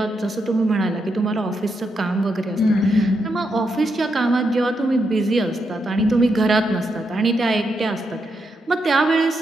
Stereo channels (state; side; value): normal; both; correlation 0.82